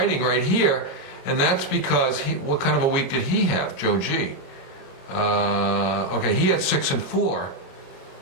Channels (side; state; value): right; late; 22 ms